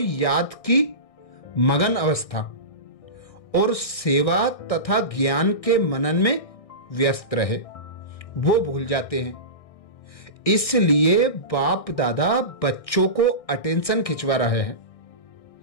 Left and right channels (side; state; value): right; late; 1.6 ms